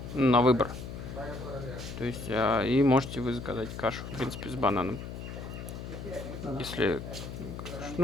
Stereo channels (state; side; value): noise; left; hum, 9 dB below the sound